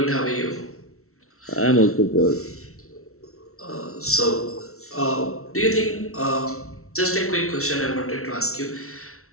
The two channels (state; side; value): late; right; 0.63 ms